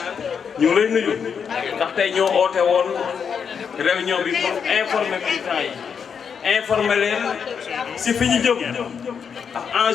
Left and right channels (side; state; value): right; quieter; 6.8 dB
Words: ñu ngi lay nuyu ndax tey ñoo oote woon réunion bi pour informer militants yi informer leen ci fi ñu jëm ak